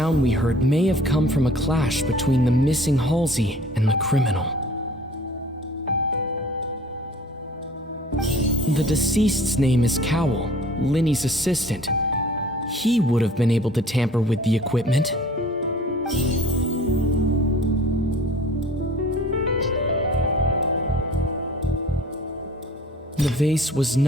we heard may have come from a clash between the missing Halsey and the criminal. The deceased's name is Cowell, Linny's assistant. He would have been able to tamper with the equipment. The vase was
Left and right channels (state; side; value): normal; both; correlation 0.48